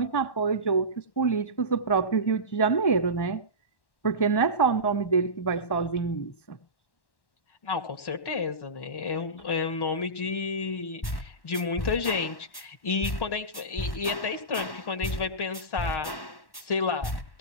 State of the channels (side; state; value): right; late; 1.1 ms